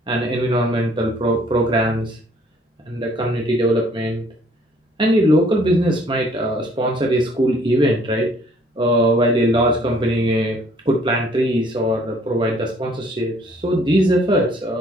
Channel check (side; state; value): both; normal; correlation 0.60